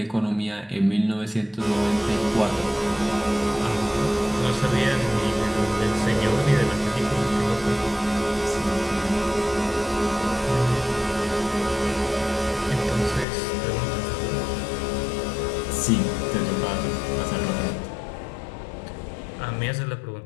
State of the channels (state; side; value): drops out; right; at 13.2 s